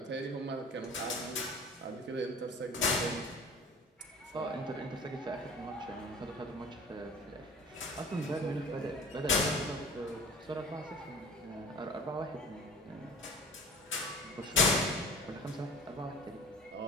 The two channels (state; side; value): normal; both; correlation 0.42